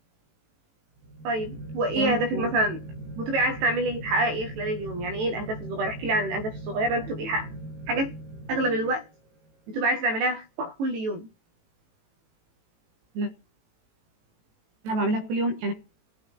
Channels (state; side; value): late; left; 18 ms